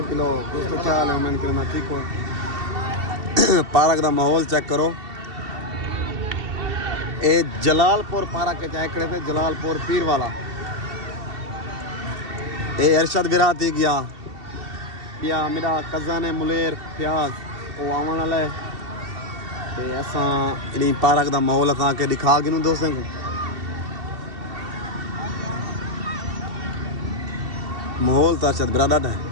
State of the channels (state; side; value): late; left; 2.7 ms